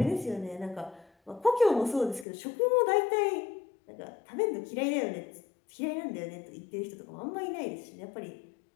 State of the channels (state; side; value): drops out; right; at 2.2 s